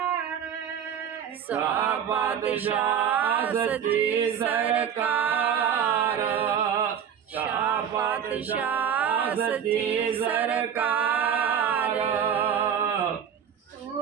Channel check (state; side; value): quieter; left; 8.5 dB